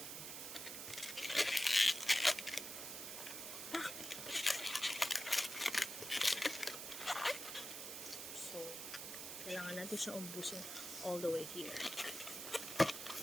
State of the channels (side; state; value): right; noise; hiss, 7 dB below the sound